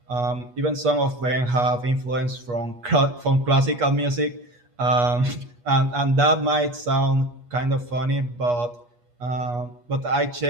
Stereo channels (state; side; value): late; left; 8.3 ms